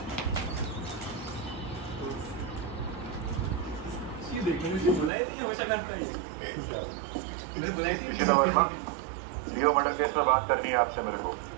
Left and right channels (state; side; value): drops out; left; at 5.1 s